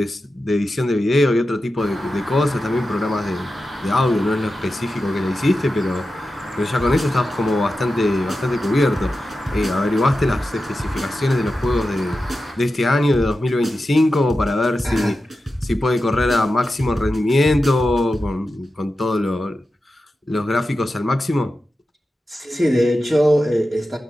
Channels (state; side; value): normal; both; correlation 0.92